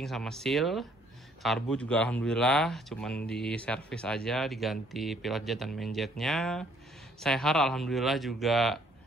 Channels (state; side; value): normal; both; correlation 0.63